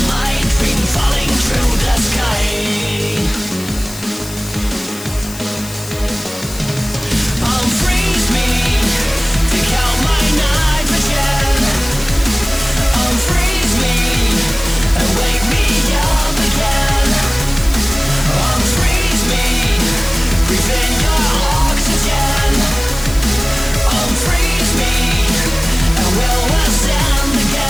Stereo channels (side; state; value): left; noise; hiss, 14 dB below the sound